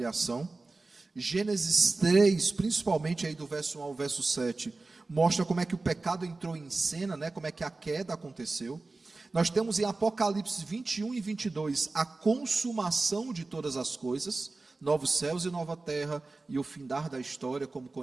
Gênesis 3, principalmente aí do verso 1 ao verso 7, mostra como é que o pecado entrou em cena, né? Como é que a queda aconteceu. Nós temos em Apocalipse 21 e 22 a consumação de todas as coisas, novos céus e nova terra, e o findar da história, como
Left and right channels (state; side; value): quieter; left; 3.5 dB